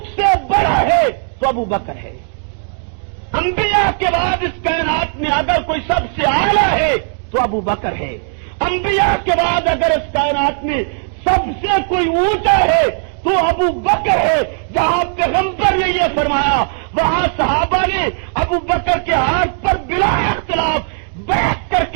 سے بڑا ہے تو ابو بکر ہے، انبیاء کے بعد اس کائنات میں اگر کوئی سب سے اعلیٰ ہے تو ابو بکر ہے، انبیاء کے بعد اگر اس کائنات میں سب سے کوئی اونچا ہے تو ابو بکر ہے۔ جہاں پیغمبر نے یہ فرمایا وہاں صحابہ نے ابو بکر کے ہاتھ پر بلا اختلاف بیٹھ کر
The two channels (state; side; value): silent; left; digital silence